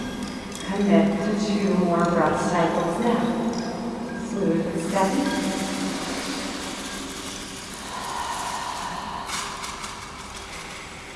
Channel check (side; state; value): both; identical; correlation 1.00